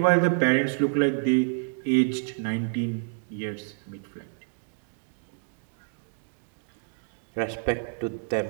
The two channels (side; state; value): left; silent; digital silence